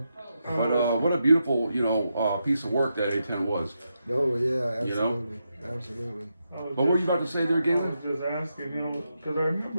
But what a beautiful, piece of work that A-10 was. Oh yeah, absolutely, absolutely. What were you about to say there, I Galen? was just asking him, because I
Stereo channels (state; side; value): inverted; both; correlation -0.85